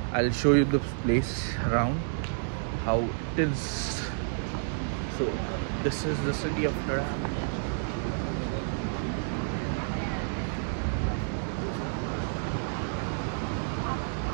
I will show you the place around how it is. So this is the city of ड्युरॅम.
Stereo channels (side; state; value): left; silent; digital silence